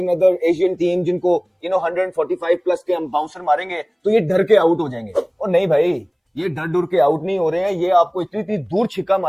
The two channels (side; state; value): both; identical; correlation 1.00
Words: एशियन टीम जिनको 145 प्लस के हम बाउंसर मारेंगे तो ये डर के आउट हो जाएंगे। और नहीं भाई, ये डर के आउट नहीं हो रहे हैं, ये आपको इतनी दूर छिक्का